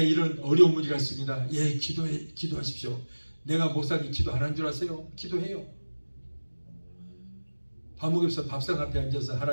이런 어려운 문제가 있습니다. 예, 기도하십시오. 내가 목사님 기도 안 한 줄 아세요? 기도해요. 밥 먹으면서 밥상 앞에 앉아서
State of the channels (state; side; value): inverted; both; correlation -1.00